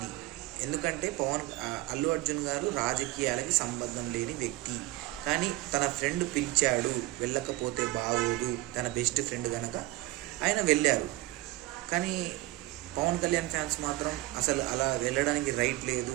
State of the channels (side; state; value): left; quieter; 17.9 dB